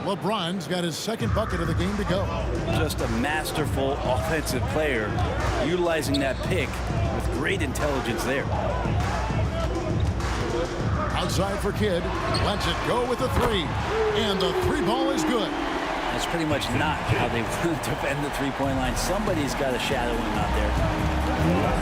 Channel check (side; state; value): both; identical; correlation 1.00